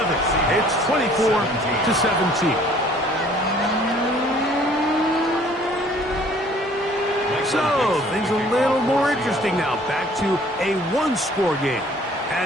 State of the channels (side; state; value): both; normal; correlation 0.56